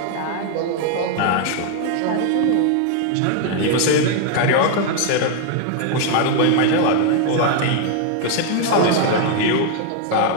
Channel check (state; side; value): different; both; correlation 0.00